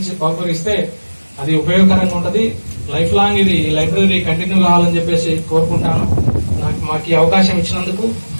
బహుకరిస్తే అది ఉపయోగకరంగా ఉంటుంది. లైఫ్ లాంగ్ ఇది లైబ్రరీ కంటిన్యూ కావాలని చెప్పేసి కోరుకుంటాను. మాకు ఈ అవకాశం ఇచ్చినందుకు,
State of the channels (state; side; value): inverted; both; correlation -1.00